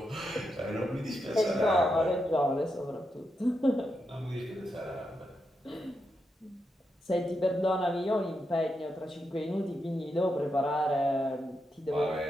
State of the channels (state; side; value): normal; both; correlation 0.85